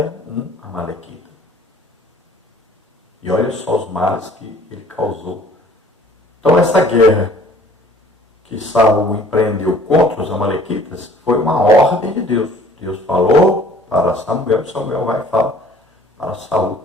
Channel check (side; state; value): both; normal; correlation 0.53